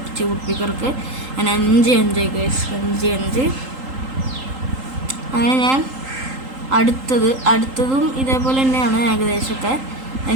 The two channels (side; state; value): left; late; 3.8 ms